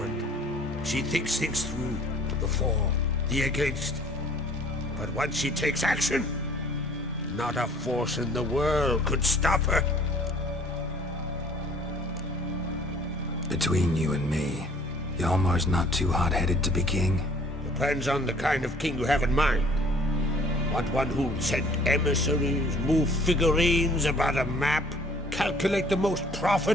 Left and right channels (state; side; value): normal; both; correlation 0.54